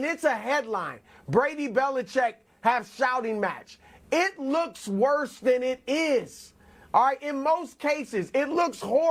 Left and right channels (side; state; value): both; identical; correlation 1.00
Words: it's a headline, Brady Belichick have shouting match, it looks worse than it is. All right, in most cases, it looks